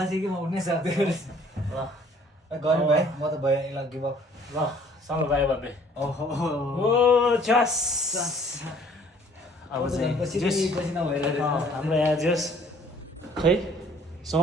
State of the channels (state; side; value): normal; both; correlation 0.57